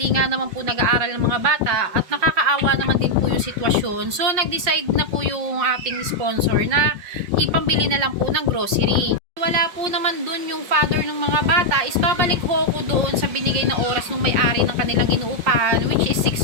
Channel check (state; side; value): late; left; 5.6 ms